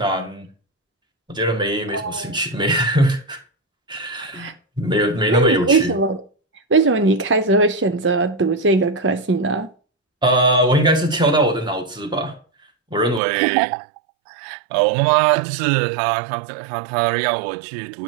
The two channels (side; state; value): left; drops out; at 13.2 s